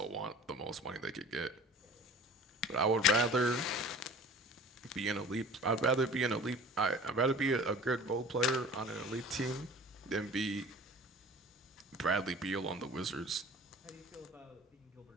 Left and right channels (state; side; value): normal; both; correlation 0.44